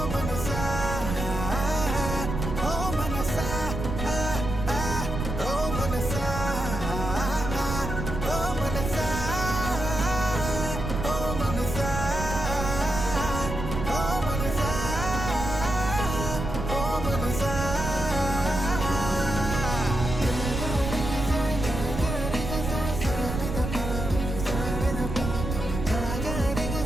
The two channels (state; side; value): noise; right; rumble, 4 dB below the sound